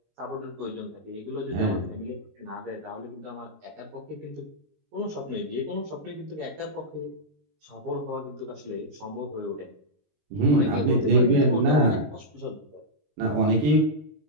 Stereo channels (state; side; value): late; left; 19 ms